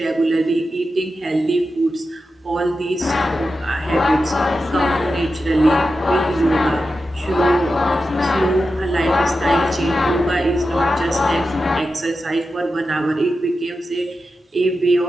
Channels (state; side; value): normal; both; correlation 0.91